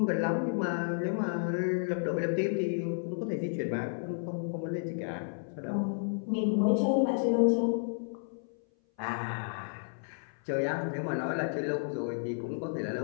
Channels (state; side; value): silent; right; 57 dB below the other